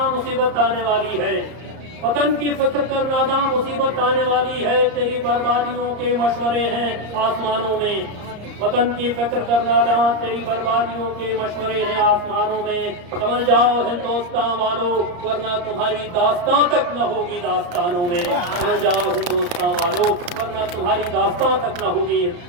मुसीबत आने वाली है, वतन की फिक्र कर नादा मुसीबत आने वाली है, तेरी बर्बादियों के मशवरे हैं आसमानों में। वतन की फिक्र कर नादा, तेरी बर्बादियों के मशवरे हैं आसमानों में। समझ जाओ हिंदुस्तान वालों, वरना तुम्हारी दास्तां तक न होगी दास्तानों में। समझ जाओ हिंदुस्तान वालों, वरना तुम्हारी दास्तां तक न होगी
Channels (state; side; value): late; left; 34 ms